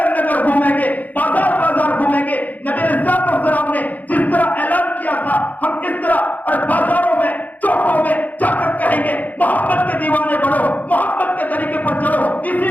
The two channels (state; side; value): late; right; 0.080 ms